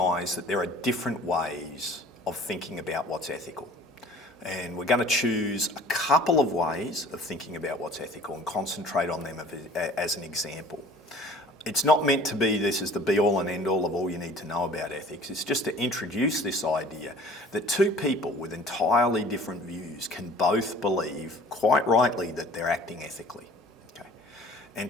that there are different ways of thinking about what's ethical. And we're going to choose a couple of ways of thinking about what's ethical and concentrate on them as an example. It's not meant to be this is the be-all and end-all of all you need to know about ethics. It's just to introduce this idea that two people with entirely different views can both believe, quite rightly, that they're acting ethically. Okay? And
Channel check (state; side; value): normal; both; correlation 0.48